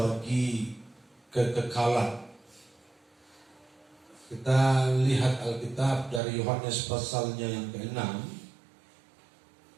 kekekalan. Kita lihat Alkitab dari Yohanes pasalnya yang ke-6.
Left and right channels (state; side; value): drops out; left; at 6.2 s